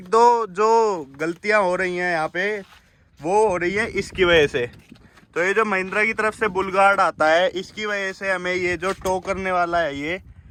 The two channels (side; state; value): both; identical; correlation 1.00